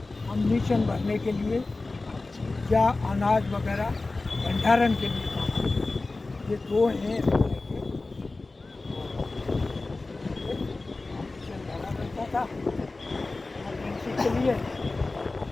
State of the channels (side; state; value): right; quieter; 3.4 dB